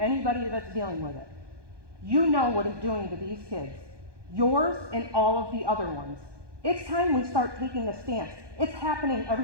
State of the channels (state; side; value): late; left; 1.2 ms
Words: that's dealing with it. You know what it's doing to these kids, yours and all of the other ones. It's time we start taking a stance. It's happening